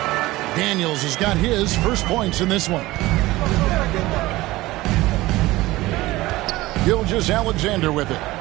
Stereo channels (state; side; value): quieter; left; 18.6 dB